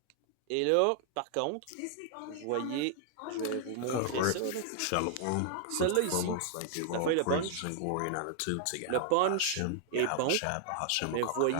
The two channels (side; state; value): both; different; correlation -0.01